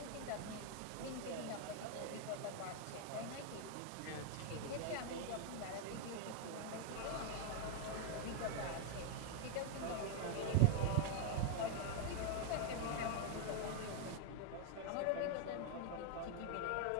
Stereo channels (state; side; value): different; both; correlation 0.00